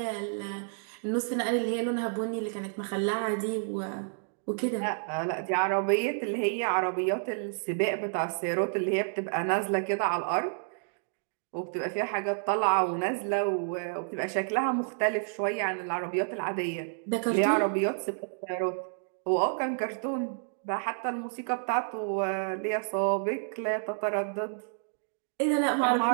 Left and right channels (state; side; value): silent; left; digital silence